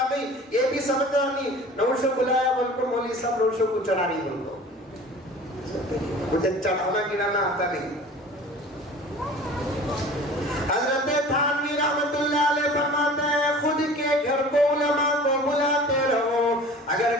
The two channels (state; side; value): normal; both; correlation 0.43